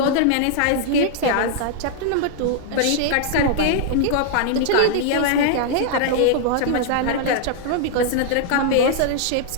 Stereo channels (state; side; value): different; both; correlation -0.01